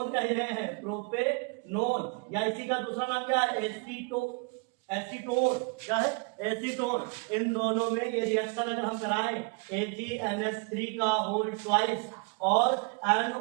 कह रहे हैं, प्रोपेनोन, या इसी का दूसरा नाम क्या है? एसीटोन। क्या है? एसीटोन। इन दोनों में ये रिएक्शन अगर हम कराएं AgNH3 का होल ट्वाइस और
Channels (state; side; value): quieter; left; 33.2 dB